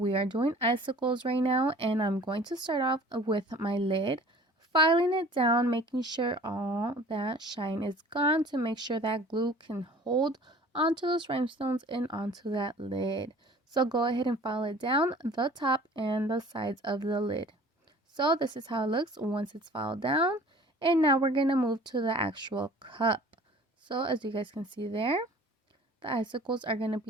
are doing icicles right now, and I'm going to start off with my lid, filing it down, making sure all that shine is gone to make sure that glue can hold onto those rhinestones and onto that lid. So go ahead and file it down the top and the sides of the lid. So this is how it looks once it's filed down, and now we're going to move to the actual cup. So as you guys can see there, the icicles are going to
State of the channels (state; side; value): normal; both; correlation 0.48